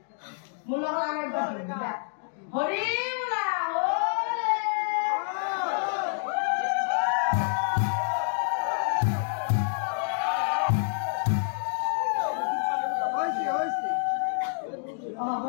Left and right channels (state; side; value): silent; right; digital silence